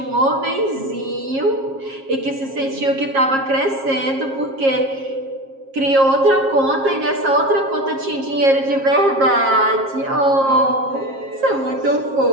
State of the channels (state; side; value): late; left; 7.4 ms